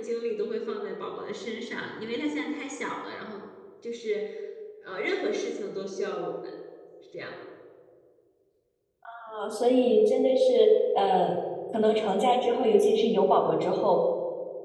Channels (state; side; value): identical; both; correlation 1.00